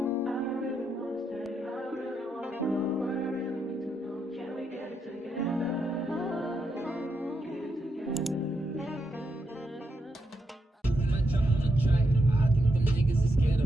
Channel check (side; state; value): both; normal; correlation 0.82